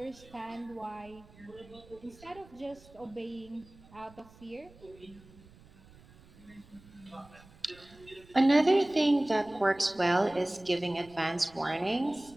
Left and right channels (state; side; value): noise; right; rumble, 24 dB below the sound